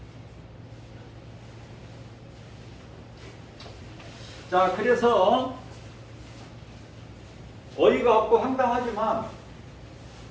자, 그래서 어이가 없고 황당하지만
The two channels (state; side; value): identical; both; correlation 1.00